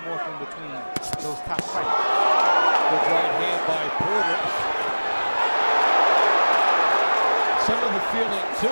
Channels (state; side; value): inverted; both; correlation -1.00